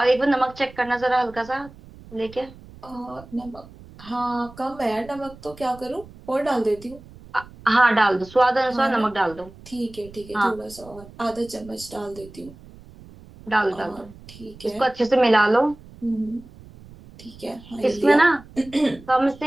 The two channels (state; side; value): noise; right; rumble, 20 dB below the sound